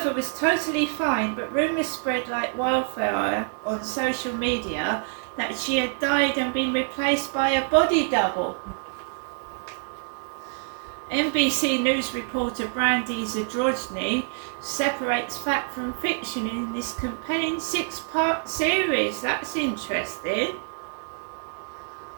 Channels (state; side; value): silent; left; 61 dB below the other